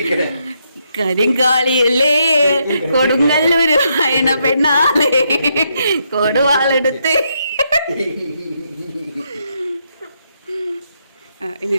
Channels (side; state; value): both; inverted; correlation -0.78